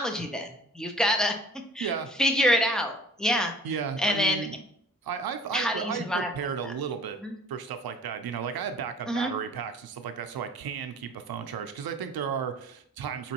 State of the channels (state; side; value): normal; both; correlation 0.49